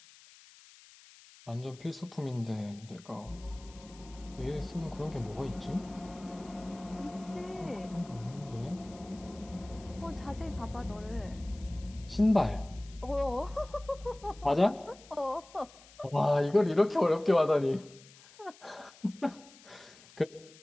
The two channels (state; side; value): noise; left; hiss, 22 dB below the sound